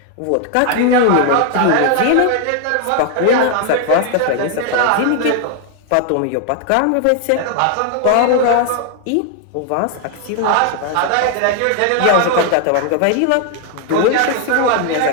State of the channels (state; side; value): different; both; correlation 0.00